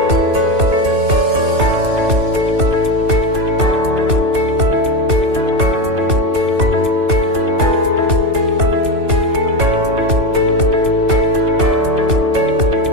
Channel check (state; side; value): late; left; 2.7 ms